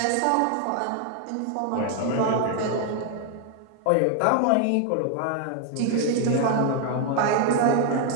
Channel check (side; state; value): both; different; correlation 0.00